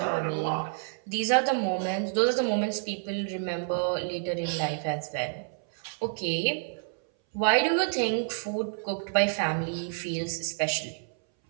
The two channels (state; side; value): silent; left; 59 dB below the other